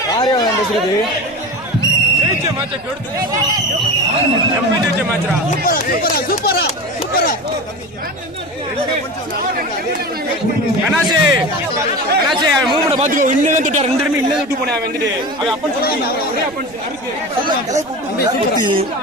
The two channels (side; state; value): right; noise; rumble, 25 dB below the sound